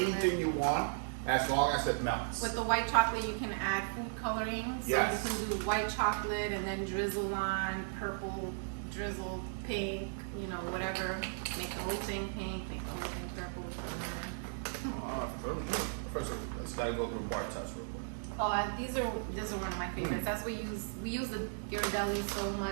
anything you want, as long as it melts. With the white chocolate, you can add food coloring. So you can do white chocolate and then drizzle on purple, drizzle pink, you know, whatever. Make the whole thing pink, make the whole thing purple. First, let's gotta go through bar test real quick. Oh, these are one of my favorites. That's what we use the Ghirardelli so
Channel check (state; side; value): silent; left; digital silence